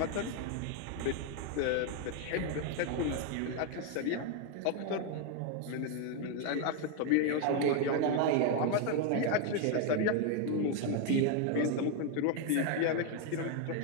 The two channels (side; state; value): both; different; correlation 0.01